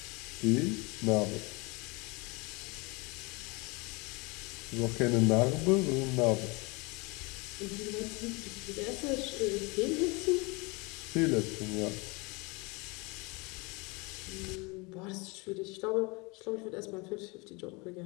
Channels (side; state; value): right; quieter; 27.4 dB